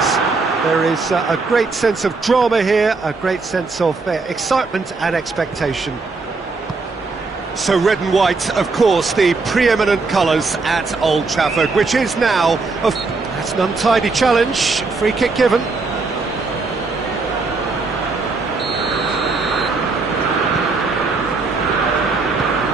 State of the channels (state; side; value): quieter; left; 4.0 dB